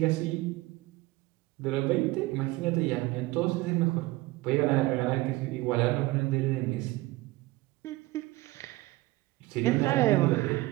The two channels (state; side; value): quieter; left; 19.6 dB